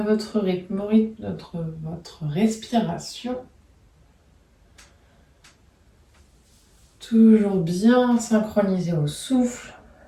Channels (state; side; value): identical; both; correlation 1.00